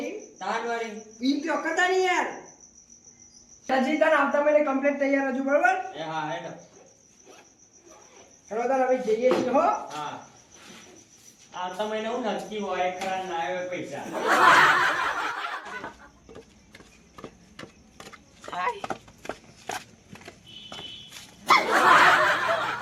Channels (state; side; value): identical; both; correlation 1.00